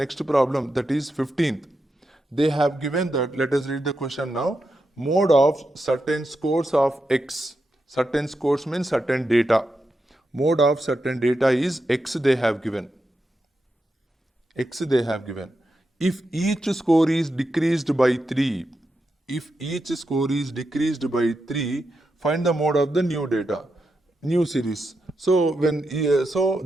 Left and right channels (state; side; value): normal; both; correlation 0.86